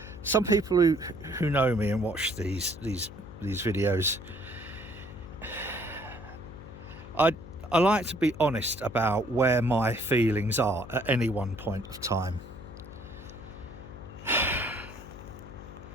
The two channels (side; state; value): left; noise; hum, 15 dB below the sound